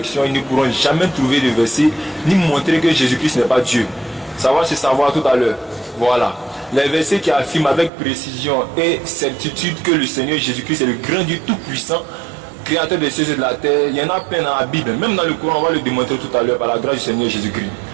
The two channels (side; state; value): left; drops out; at 7.9 s